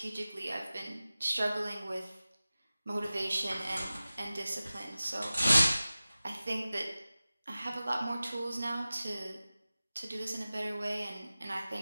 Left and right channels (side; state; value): both; inverted; correlation -0.96